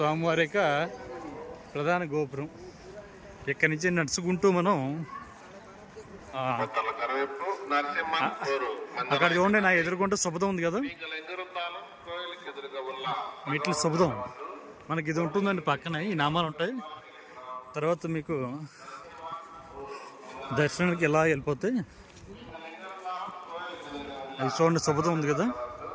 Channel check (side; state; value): both; identical; correlation 1.00